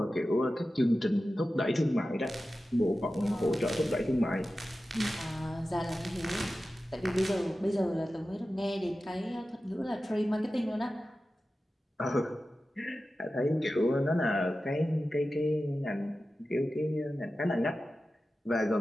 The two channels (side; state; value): both; normal; correlation 0.94